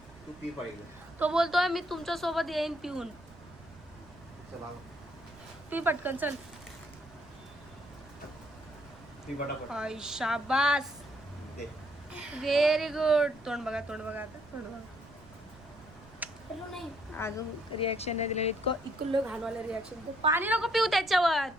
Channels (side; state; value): right; noise; rumble, 21 dB below the sound